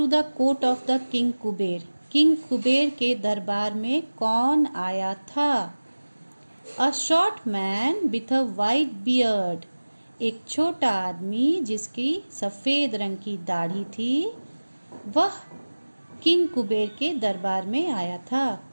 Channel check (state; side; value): inverted; both; correlation -1.00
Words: the court of the King Kuber? King Kuber के दरबार में कौन आया था? A short man with a white beard, एक छोटा आदमी जिसकी सफ़ेद रंग की दाढ़ी थी, वह किंग कुबेर के दरबार में आया था.